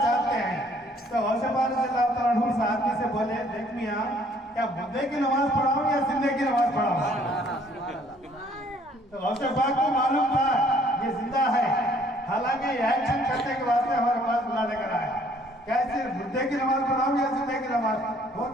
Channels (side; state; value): both; normal; correlation 0.61